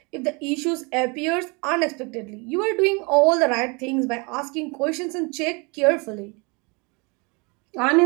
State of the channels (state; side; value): quieter; left; 30.0 dB